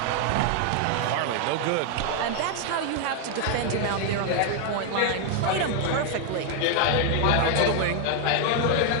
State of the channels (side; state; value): both; different; correlation 0.00